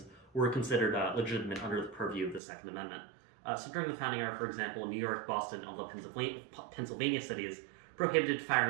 were considered legitimate under the purview of the Second Amendment. So during the founding era, for example, New York, Boston, and all the Pennsylvania cities prohibited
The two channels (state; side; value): drops out; left; at 2.4 s